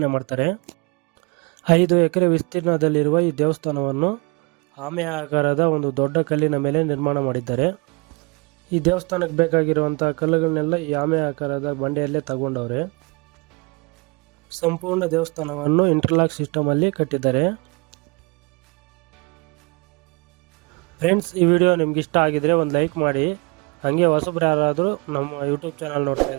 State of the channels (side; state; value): left; quieter; 29.8 dB